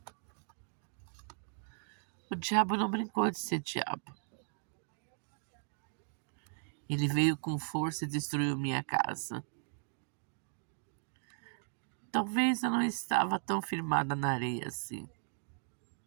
O diabo não brincou de ser diabo. Ele veio com força e destruiu minha casa. Talvez eu não estava tão firmada na areia assim.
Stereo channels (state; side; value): silent; left; digital silence